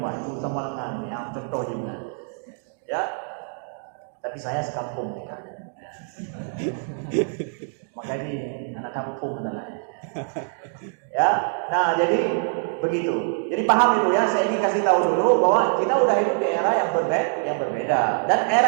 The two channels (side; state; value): left; silent; 57 dB below the other